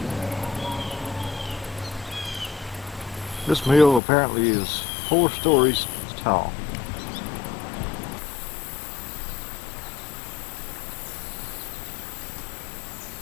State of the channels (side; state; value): right; drops out; at 4.0 s